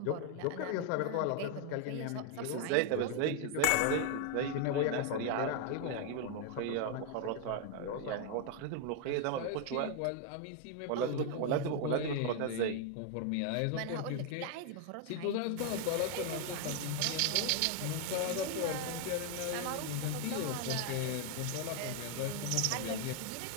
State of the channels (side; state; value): both; different; correlation 0.00